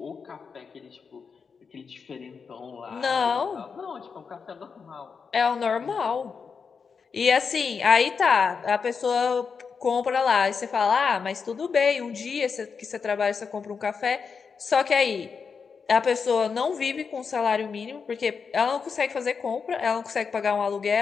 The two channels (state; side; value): quieter; right; 5.7 dB